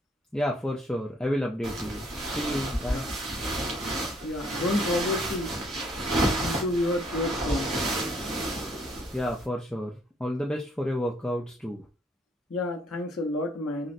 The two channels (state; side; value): normal; both; correlation 0.65